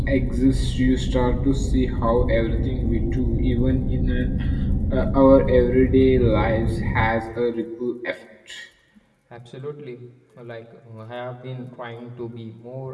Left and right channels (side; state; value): both; identical; correlation 1.00